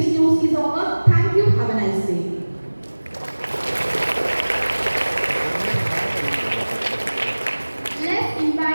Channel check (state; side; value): inverted; both; correlation -1.00